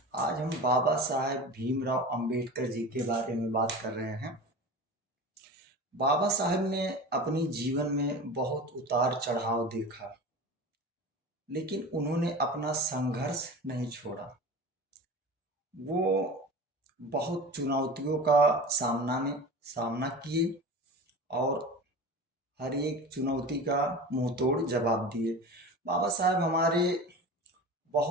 आज हम बाबा साहेब भीमराव अंबेडकर जी के बारे में बात कर रहे हैं। बाबा साहेब ने अपनी जीवन में बहुत उतार चढ़ाव देखा, लेकिन उन्होंने अपना संघर्ष नहीं छोड़ा। वो बहुत चुनौतियों का सामना किए और हर एक चुनौती का मुंह तोड़ जवाब दिए। बाबा साहेब हमारे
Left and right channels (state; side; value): normal; both; correlation 0.33